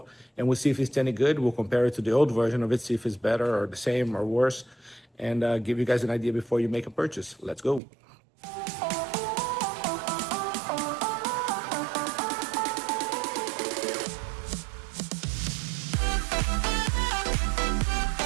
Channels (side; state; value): left; drops out; at 7.8 s